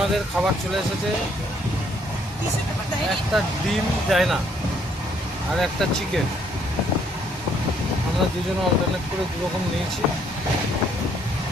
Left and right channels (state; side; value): normal; both; correlation 0.67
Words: খাবার চলে এসেছে, একটা ডিম দেয় না আর একটা চিকেন। আমরা দুজনে অল্টারনেট করে দুরকম নিয়েছি,